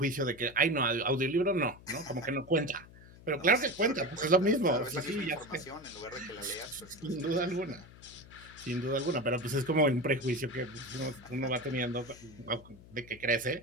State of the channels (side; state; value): left; noise; hum, 20 dB below the sound